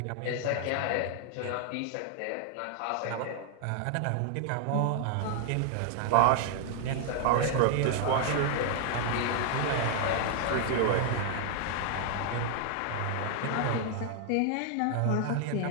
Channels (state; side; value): different; both; correlation 0.00